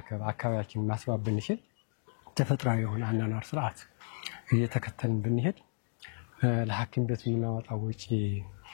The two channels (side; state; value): right; silent; digital silence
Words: አካባቢያችንን ማስዋብ ብንችል ተፈጥሯዊ የሆነ አናኗር ስርዓት እየተከተልን ብንሄድ ለሐኪም ቤት የምናወጣው ወጪ